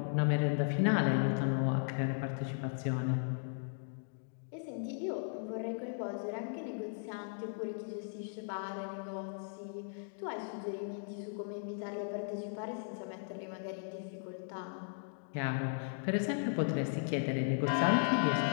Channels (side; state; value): right; silent; digital silence